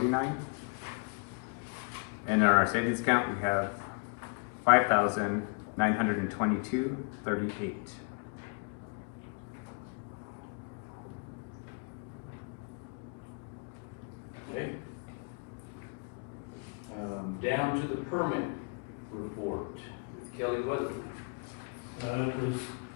And in our savings account, we have 5,922.38. Okay. Down to the permit report with Kelly Weatherford. There's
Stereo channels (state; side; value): quieter; right; 37.4 dB